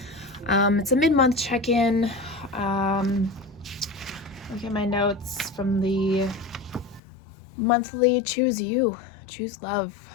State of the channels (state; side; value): drops out; right; at 7.0 s